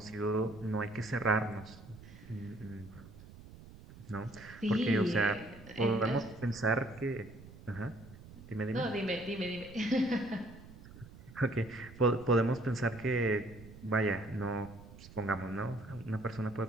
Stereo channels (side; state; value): right; noise; rumble, 18 dB below the sound